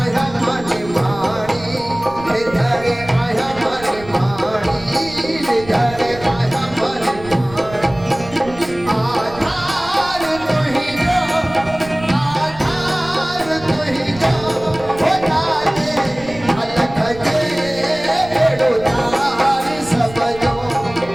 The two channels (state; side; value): noise; right; rumble, 17 dB below the sound